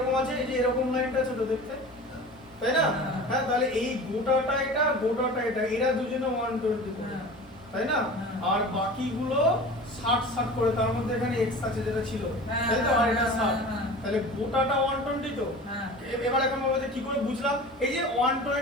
আছে, এই যে এরকম লাইনটা ছোট দেখতে, তাই না। হ্যাঁ। হ্যাঁ তাহলে এই গোটাটা এটা, গোটাটা এটা, এরা দুজনে 120 করে, হ্যাঁ। তাই না। হ্যাঁ। আর বাকিগুলো 60 করে, তার মধ্যে এখানে x আছে যেটা ছিল, হ্যাঁ, তাই তো, আর এটা হ্যাঁ, 60, হ্যাঁ। তাহলে গোটাটা 120 তো। হ্যাঁ এবার এখন বলবো যে কি করে বুঝলাম, এই যে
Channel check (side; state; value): both; normal; correlation 0.37